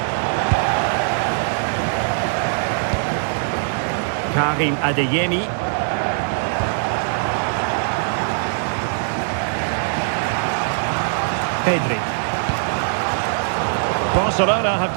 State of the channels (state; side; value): silent; left; digital silence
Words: Karim Adeyemi. Pedri. Barcelona have